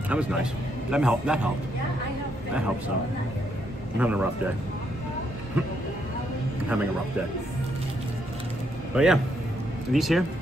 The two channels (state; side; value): normal; both; correlation 0.75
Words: is. That was nice. That helped. Yeah, I have. That helps some. I'm having a rough day. I'm having a rough day. But yeah, these here,